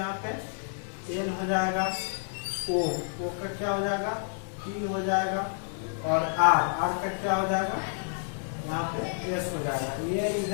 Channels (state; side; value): silent; right; 58 dB below the other